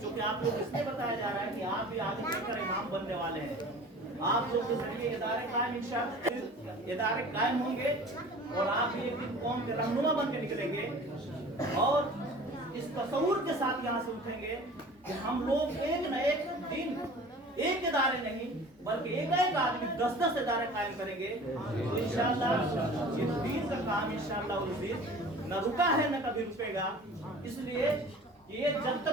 आप लोग इसलिए बताया जा रहा है कि आप भी आगे चलकर इमाम बनने वाले हैं। आप लोग के जरिए इदारे कायम होंगे और आप भी एक दिन कौम के रहनुमा बन के निकलेंगे और इस तसव्वुर के साथ यहाँ से उठेंगे कि हम लोग एक न एक दिन एक इदारे नहीं बल्कि एक आदमी 10-10 इदारे कायम करेंगे। तो इंशाअल्लाह इस दीन का काम इंशाअल्लाह न रुका है न कभी रुकेगा। इसलिए ये जब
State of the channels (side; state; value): both; normal; correlation 0.43